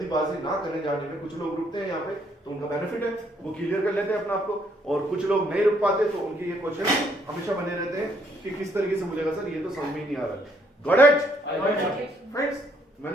ना करने जाने में, कुछ लोग रुकते हैं यहाँ पे तो उनका बेनिफिट है, वो क्लियर कर लेते हैं अपने आप को, और कुछ लोग नहीं रुक पाते तो उनके ये क्वेश्चन हमेशा बने रहते हैं कि किस तरीके से बोलेगा सर, ये तो समझ में ही नहीं आ रहा, got it I got it. Friends,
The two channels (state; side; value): normal; both; correlation 0.69